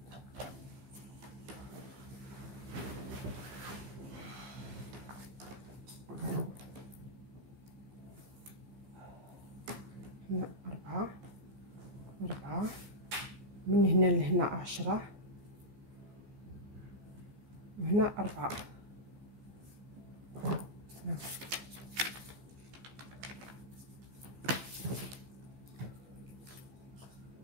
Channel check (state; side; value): late; left; 15 ms